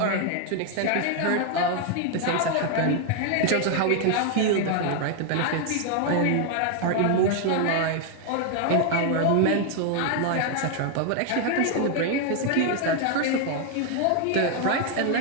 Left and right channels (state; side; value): different; both; correlation 0.01